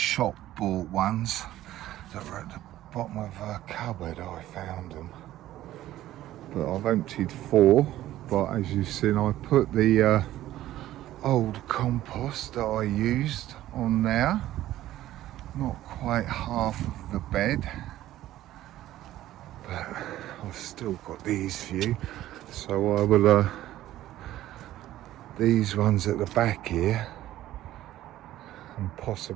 bought ones that were at the bottom of a cupboard. I found them, but I've emptied 4. But as you've seen, I put the old compost that I used on there, not quite half of the bed, but I've still got these few. So I will these ones at the back here, and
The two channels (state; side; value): quieter; left; 14.1 dB